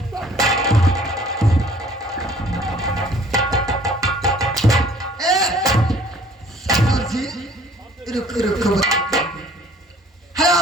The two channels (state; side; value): normal; both; correlation 0.55